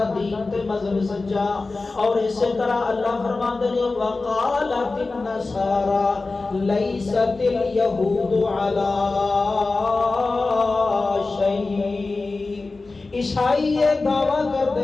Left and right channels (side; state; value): right; quieter; 3.6 dB